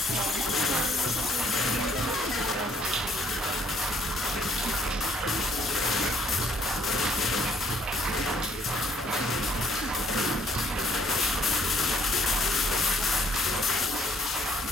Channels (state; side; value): normal; both; correlation 0.64